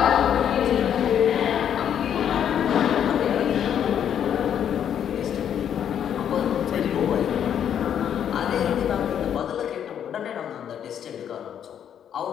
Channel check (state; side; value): quieter; right; 9.2 dB